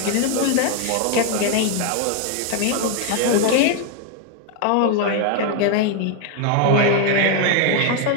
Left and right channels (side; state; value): both; different; correlation 0.01